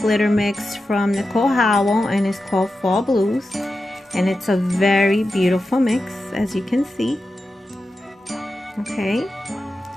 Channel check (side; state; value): both; normal; correlation 0.91